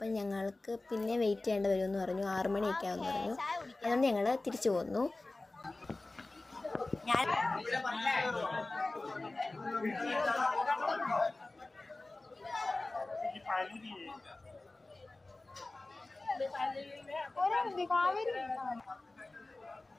ഞങ്ങൾക്ക് പിന്നെ വെയിറ്റ് ചെയ്യേണ്ടി വരുമെന്ന് പറഞ്ഞു. 6 മണിയൊക്കെ ആവുമെന്ന് പറഞ്ഞു. അതുകൊണ്ട് ഞങ്ങൾ തിരിച്ചു പോന്നു.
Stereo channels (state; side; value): quieter; right; 3.0 dB